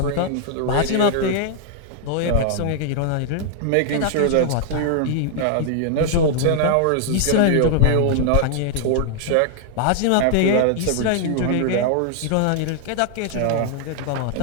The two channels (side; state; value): both; different; correlation -0.01